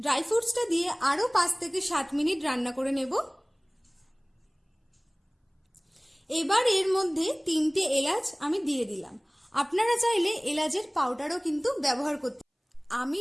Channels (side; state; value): both; identical; correlation 1.00